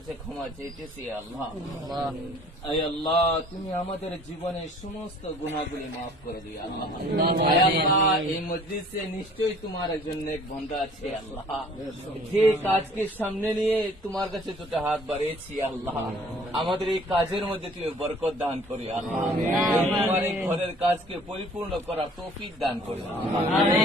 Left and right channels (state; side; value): normal; both; correlation 0.53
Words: ক্ষমা চাইতেছি আল্লাহ اے আল্লাহ তুমি আমাদের জীবনের সমস্ত গুনাহগুলি maaf করে দিও আল্লাহ اے আল্লাহ এই মজলিসে নিশ্চয়ই তোমার একজন নেক বান্দা আছে আল্লাহ যে কাজকে সামনে নিয়ে তোমার কাছে দুটো হাত বাড়িয়েছি আল্লাহ আমাদের এই কাজের মধ্যে তুমি বরকত দান করি আল্লাহ তোমার এই ঘরের কাজকে পরিপূর্ণ করার তৌফিক দান করি